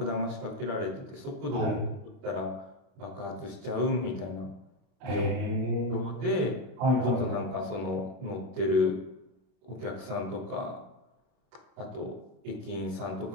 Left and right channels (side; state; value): left; late; 32 ms